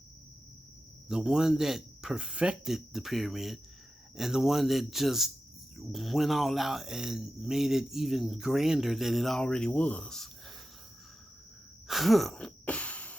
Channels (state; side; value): normal; both; correlation 0.91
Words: the one that perfected the pyramid and the one that just went all out and made it even grander than it already was. Huh.